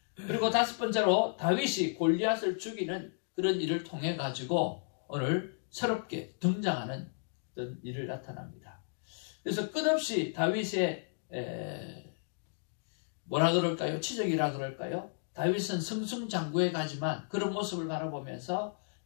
그리고 다섯 번째로 다윗이 골리앗을 죽이는 그런 일을 통해 가지고 오늘 새롭게 등장하는 어떤 일을 나타납니다. 그래서 끝없이 다윗의 뭐라 그럴까요? 치적이라 그럴까요? 다윗은 승승장구해 가지만 그런 모습을 바라보면서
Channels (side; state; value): right; silent; digital silence